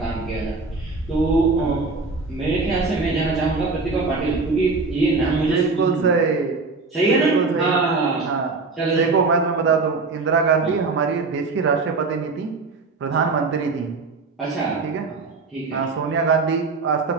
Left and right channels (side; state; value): left; quieter; 4.0 dB